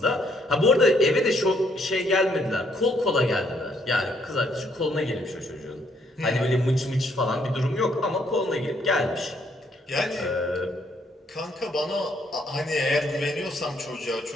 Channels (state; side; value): normal; both; correlation 0.69